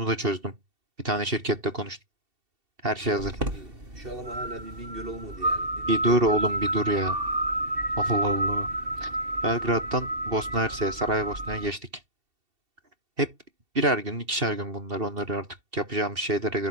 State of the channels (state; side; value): late; left; 2.7 ms